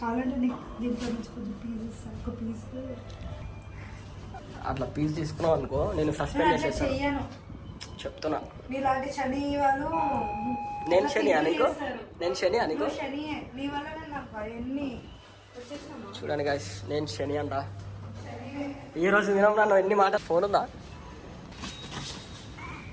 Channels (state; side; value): identical; both; correlation 1.00